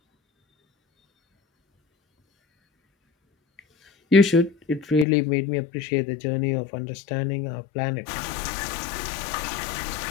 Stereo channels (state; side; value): drops out; right; at 5.1 s